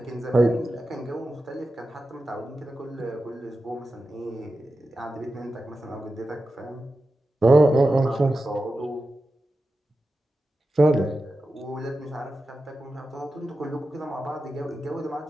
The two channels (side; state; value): both; normal; correlation 0.92